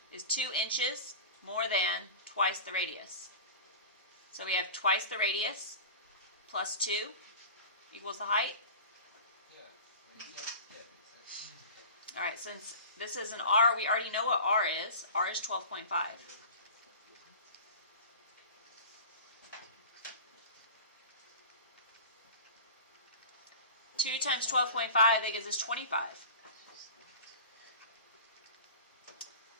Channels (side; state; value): both; inverted; correlation -0.36